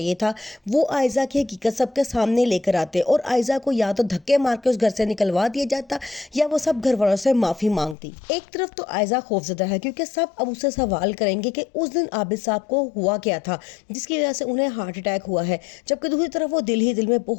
था। वो आयजा की हकीकत सबके सामने लेकर आते और आयजा को या तो धक्के मार के उस घर से निकलवा दिया जाता या वो सब घर वालों से माफ़ी मांगती। एक तरफ तो आयजा खौफजदा है क्योंकि सब अब उससे सवाल करेंगे कि उस दिन आबिद साहब को हुआ क्या था जिसकी वजह से उन्हें हार्ट अटैक हुआ है, जबकि दूसरी तरफ वो दिल ही दिल में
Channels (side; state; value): right; drops out; at 8.0 s